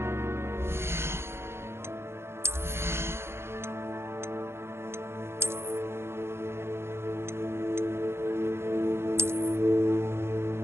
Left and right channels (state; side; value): late; left; 0.12 ms